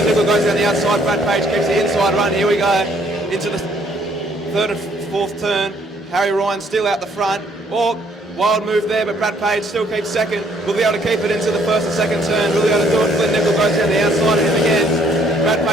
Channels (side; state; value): both; normal; correlation 0.65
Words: Nickel goes down the outside, Brad Page keeps the inside run. Here we go, into the 3rd and 4th turn. Harry Ryan still out the front. Oh, Wild move there, but Brad Page still keeps second. Will be able to keep it into the first and second turn. Will be able to do it. Flynn Nickel goes down the outside of him again. Brad